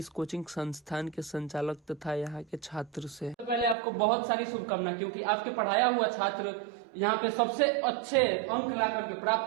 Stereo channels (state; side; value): drops out; left; at 3.8 s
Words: कोचिंग संस्थान के संचालक तथा यहाँ के छात्र से। तो पहले आपको बहुत सारी शुभकामनाएं, क्योंकि आपके पढ़ाया हुआ छात्र यहाँ पे सबसे अच्छे अंक ला करके